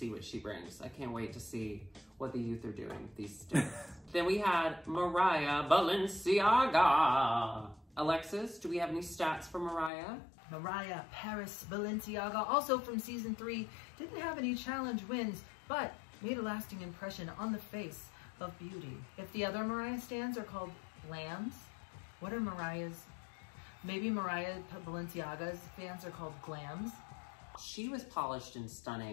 what she brings. I can't wait to see what the youth are doing these days. Then we had Mariah Balenciaga. Alexis, do we have any stats for Mariah? Mariah Paris Balenciaga, also from season 3, didn't have any challenge wins, but made a lasting impression on the face of beauty. If the other Mariah stands are called glams, what are Mariah's? Maybe Mariah Balenciaga's fans are called glams. She was polished and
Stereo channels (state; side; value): drops out; right; at 9.9 s